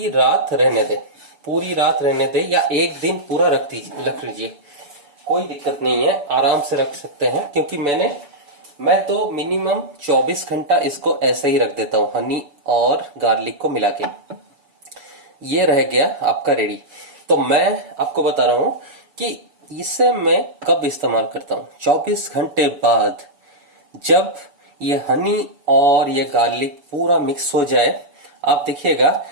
रात रहने दें, पूरी रात रहने दें, या एक दिन पूरा रख लीजिए, कोई दिक्कत नहीं है, आराम से रख सकते हैं। क्योंकि मैं तो मिनिमम 24 घंटा इसको ऐसे ही रख देता हूँ हनी और गार्लिक को मिला के। ये रह गया आपका रेडी। तो मैं आपको बता रहा हूं कि इसे मैं कब इस्तेमाल करता हूं। 24 घंटे बाद जब ये हनी और ये गार्लिक पूरा मिक्स हो जाए, आप देखिएगा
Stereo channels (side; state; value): left; late; 6.9 ms